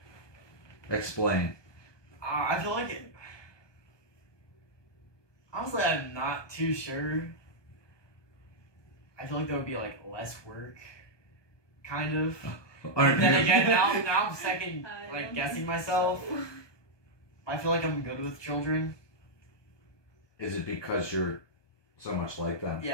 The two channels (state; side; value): late; right; 1.2 ms